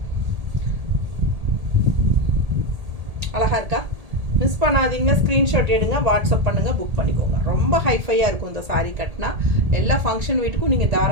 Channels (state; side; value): late; left; 1.8 ms